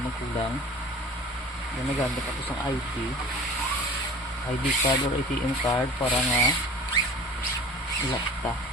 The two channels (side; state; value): both; normal; correlation 0.41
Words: magkulang. Yan, nagamit ako sa ID card or ATM card para nga ilakta.